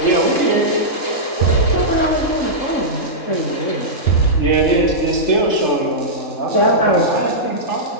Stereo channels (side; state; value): right; late; 3.7 ms